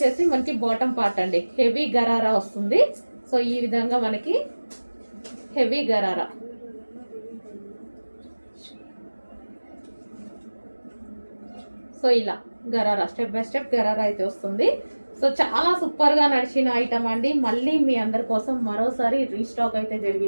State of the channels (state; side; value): inverted; both; correlation -1.00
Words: మనకి బాటమ్ పార్ట్ అండి, హెవీ గరారా వస్తుంది. సో ఈ విధంగా మనకి హెవీ గరారా, సో ఇలా gharara step by step gharara అయితే వస్తుంది. సో చాలా సూపర్ గా నడిచిన ఐటమ్ అండి. మళ్ళీ మీ అందరి కోసం మరోసారి రీస్టాక్ అయితే